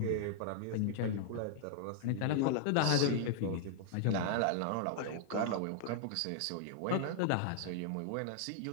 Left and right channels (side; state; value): both; different; correlation -0.01